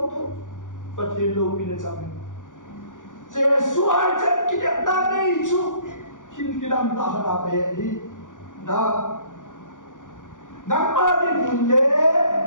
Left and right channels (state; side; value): late; right; 0.87 ms